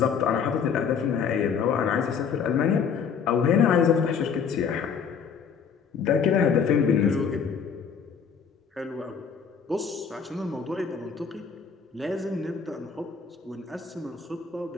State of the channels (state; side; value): quieter; right; 6.6 dB